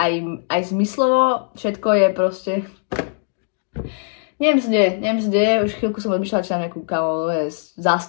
zmyslovo. Všetko je proste... Neviem, čo deje. Už chvíľku som odmýšľala, či mám nejakú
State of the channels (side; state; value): right; silent; digital silence